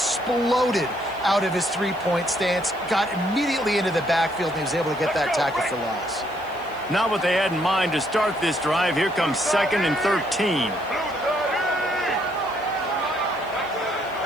out of his three-point stance, got immediately into the backfield, and he was able to get that tackle for loss. Not what they had in mind to start this drive. Here comes 2nd and 13.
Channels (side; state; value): right; noise; hiss, 27 dB below the sound